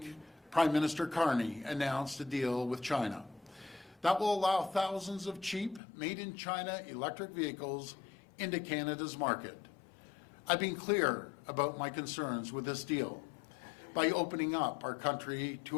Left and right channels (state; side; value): drops out; right; at 5.8 s